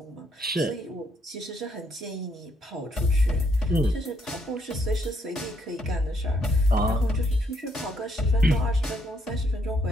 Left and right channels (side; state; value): both; normal; correlation 0.72